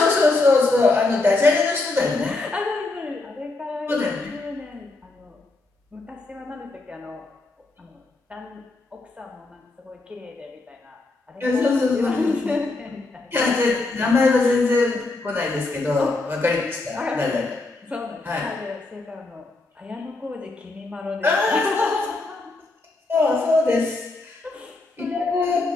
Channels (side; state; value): right; quieter; 3.3 dB